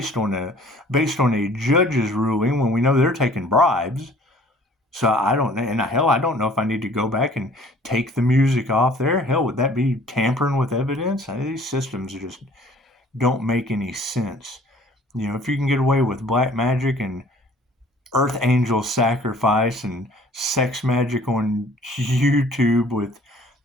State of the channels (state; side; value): normal; both; correlation 0.53